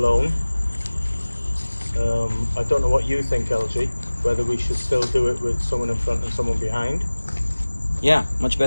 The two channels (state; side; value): inverted; both; correlation -1.00